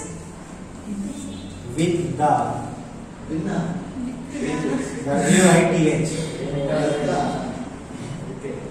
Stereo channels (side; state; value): both; identical; correlation 1.00